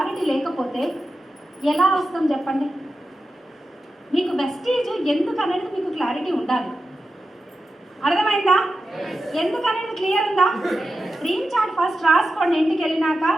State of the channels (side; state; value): both; normal; correlation 0.91